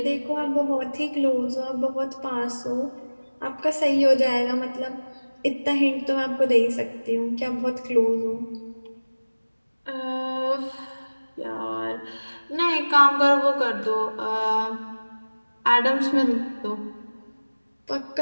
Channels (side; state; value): both; inverted; correlation -1.00